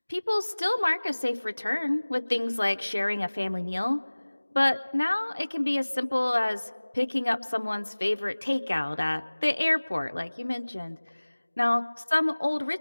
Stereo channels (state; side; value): inverted; both; correlation -1.00